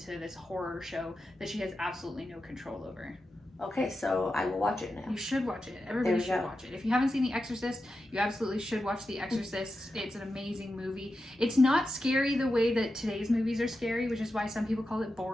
this horror show that she has absolutely no control over. Okay, so I will watch it now. You should watch it. Everybody should watch it. If you haven't seen The Exorcist, you absolutely should watch The Exorcist. It's an amazing movie. It's not scary the way that today's movies are scary, which is why some people call it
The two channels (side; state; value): both; normal; correlation 0.90